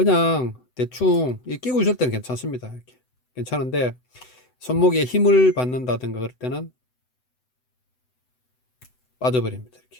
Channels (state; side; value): late; right; 7.9 ms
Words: 대충 끼고 있을 때는 괜찮습니다. 이렇게 괜찮은데 손목에 힘을 받는다든가 그럴 때는 빠져버립니다.